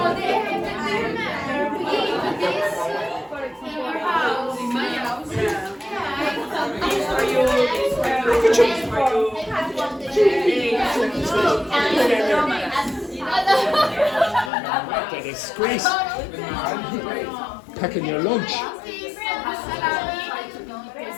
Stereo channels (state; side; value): drops out; right; at 14.5 s